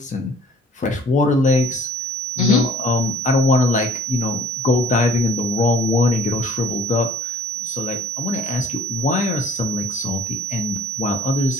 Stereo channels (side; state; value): both; normal; correlation 0.56